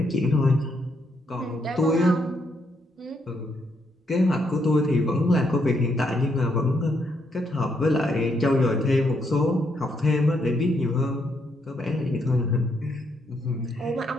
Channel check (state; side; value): normal; both; correlation 0.76